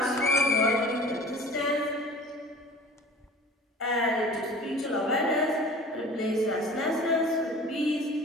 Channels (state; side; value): normal; both; correlation 0.41